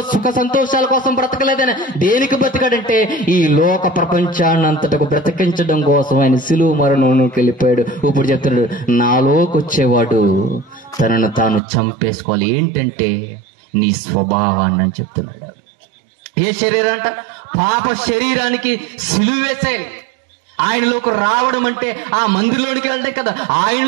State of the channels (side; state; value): left; drops out; at 11.6 s